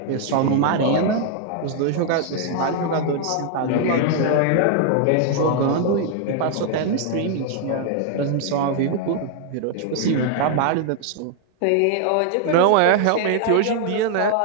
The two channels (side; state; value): both; different; correlation 0.00